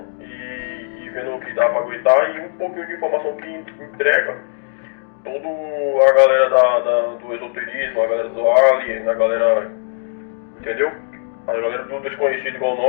e vendo o que dá pra aguentar, e um pouquinho de informação que entrega toda a galera do esoterismo, a galera do alien, a galera, entendeu? A galera do desconhecido igual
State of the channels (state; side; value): silent; right; digital silence